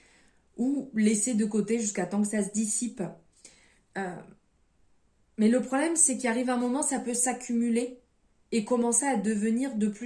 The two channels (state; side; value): identical; both; correlation 1.00